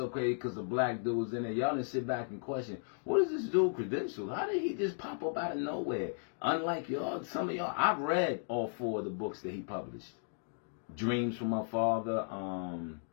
crazy because a black dude was in there. Y'all didn't sit back and question, what is this dude credential? How did he just pop up out of nowhere? Unlike y'all, some of y'all, I've read all 4 of the books that he published. Dreams from My Father,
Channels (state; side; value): silent; right; digital silence